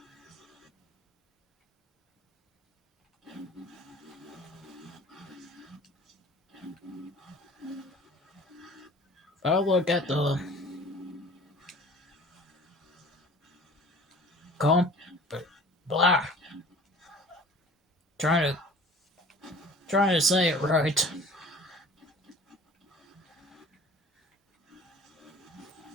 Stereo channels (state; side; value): normal; both; correlation 0.46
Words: if I look at the comp blah Trying to say it right.